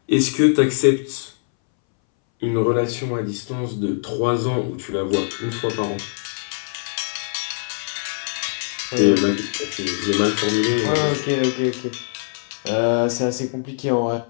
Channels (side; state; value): right; silent; 62 dB below the other